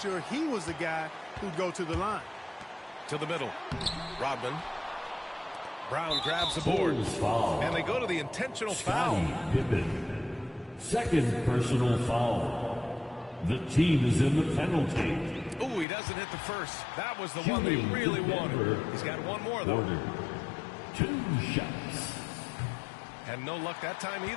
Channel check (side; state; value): right; drops out; at 15.9 s